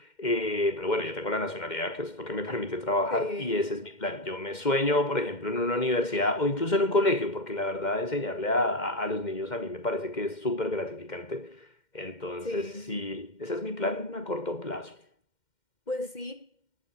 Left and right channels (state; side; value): late; right; 2.1 ms